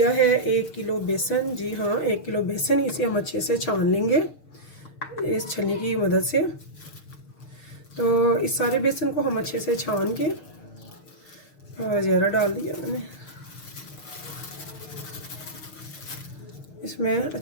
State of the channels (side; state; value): right; late; 6.6 ms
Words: है 1 किलो बेसन। जी हाँ, 1 किलो बेसन। इसे हम अच्छे से छान लेंगे इस छन्नी की मदद से। तो इस सारे बेसन को हम अच्छे से छान के ज़ीरा डाल दिया मैंने, इसमें